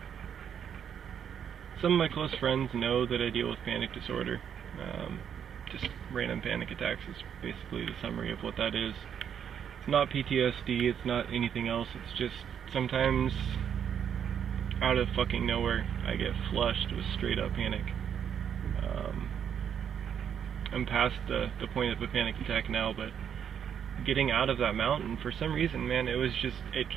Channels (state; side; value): quieter; left; 8.4 dB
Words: Some of my close friends know that I deal with panic disorder. Just random panic attacks is basically the summary of what that is. It's not PTSD, it's not anything else, it's just sometimes out of fucking nowhere I get flushed with straight up panic. I'm past the point of a panic attack now, but getting out of that mountain, for some reason, man, it